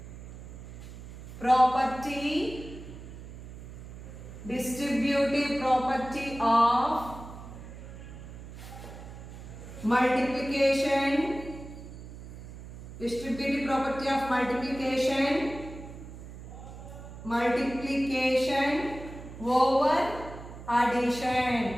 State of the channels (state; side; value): noise; right; hum, 13 dB below the sound